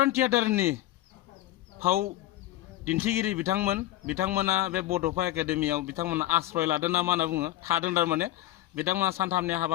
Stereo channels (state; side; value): quieter; right; 15.1 dB